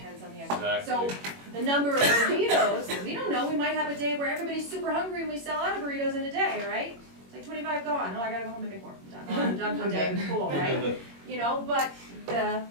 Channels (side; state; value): left; late; 21 ms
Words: on the X. Exactly. So the number of burritos, we don't know, we might have a day where everybody's super hungry and we sell out of burritos in a day, right? It's like 25 gone, oh, I gotta go home and make more, I'm done for the day, cool, right? You know, but the